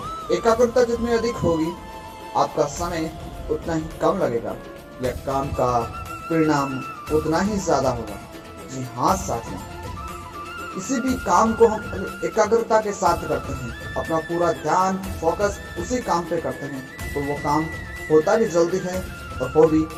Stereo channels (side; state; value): both; identical; correlation 1.00